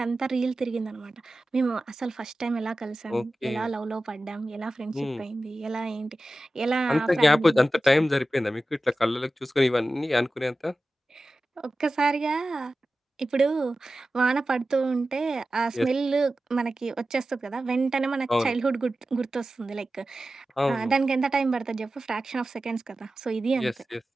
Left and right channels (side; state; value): both; normal; correlation 0.95